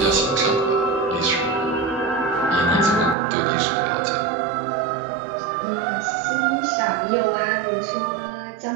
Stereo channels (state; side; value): drops out; left; at 3.2 s